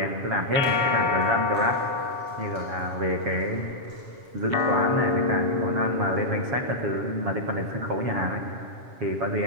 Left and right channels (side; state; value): left; late; 7.3 ms